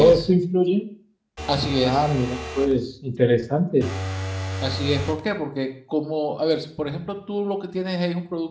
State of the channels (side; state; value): both; identical; correlation 1.00